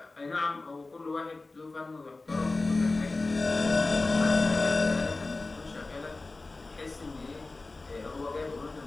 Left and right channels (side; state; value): right; quieter; 3.4 dB